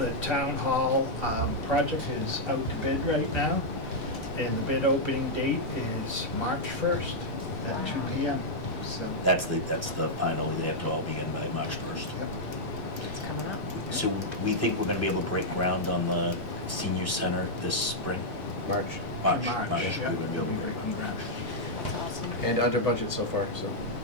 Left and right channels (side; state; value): both; normal; correlation -0.05